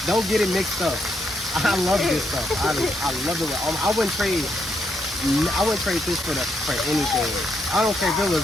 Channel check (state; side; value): normal; both; correlation 0.78